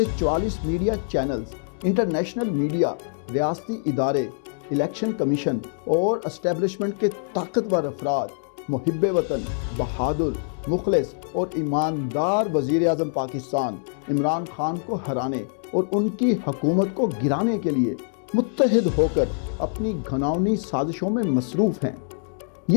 44 میڈیا چینلز، انٹرنیشنل میڈیا، ریاستی ادارے، الیکشن کمیشن اور اسٹیبلشمنٹ کے طاقتور افراد محب وطن، بہادر، مخلص اور ایماندار وزیر اعظم پاکستان عمران خان کو ہرانے اور ان کی حکومت کو گرانے کے لیے متحد ہو کر اپنی گھناؤنی سازشوں میں مصروف ہیں۔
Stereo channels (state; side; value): silent; right; digital silence